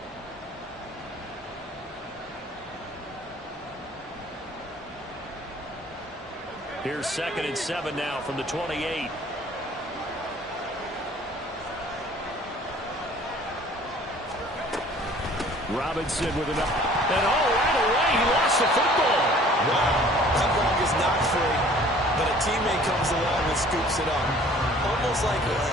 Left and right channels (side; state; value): both; normal; correlation 0.52